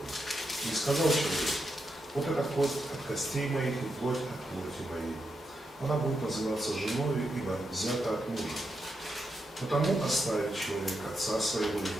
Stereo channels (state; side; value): normal; both; correlation 0.84